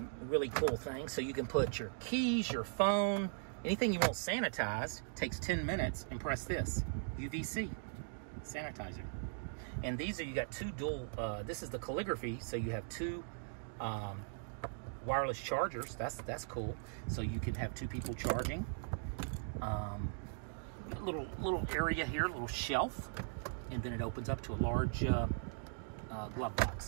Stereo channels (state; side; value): silent; left; digital silence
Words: really cool thing. So you can put your keys, your phone, anything you want sanitized. Takes 10 minutes, and press this, UVC sanitizer. And these are, you got two dual, this is the calligraphy, so you have two wireless chargers. That's cool. So you can have two people charging. Little area here, little shelf, and then it opens up to a large glove